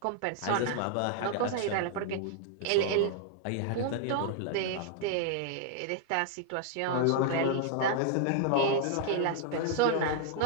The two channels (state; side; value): different; both; correlation -0.01